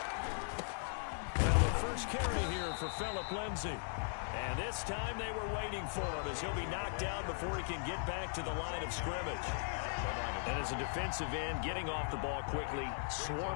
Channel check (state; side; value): silent; right; 52 dB below the other